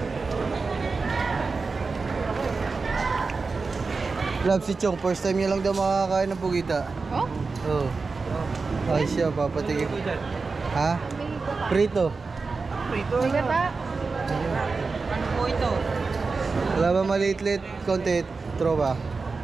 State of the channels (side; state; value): left; quieter; 4.3 dB